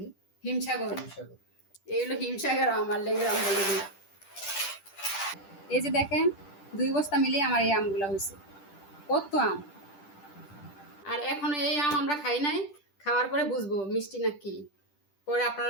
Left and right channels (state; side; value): late; right; 10 ms